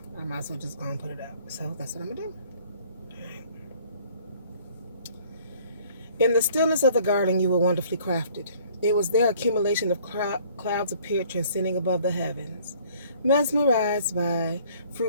I might as well just go and put it out. So that's what I'm going to do. All right. In the stillness of the garden, you were wonderfully crafted. It was their accumulation of clouds appeared transcending above the heavens. Mesmerized by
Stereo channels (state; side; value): inverted; both; correlation -0.56